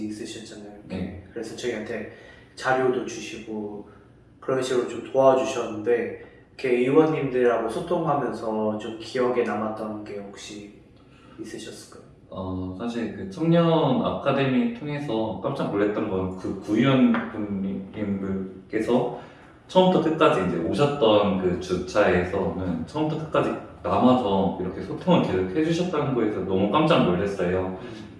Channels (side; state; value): both; identical; correlation 1.00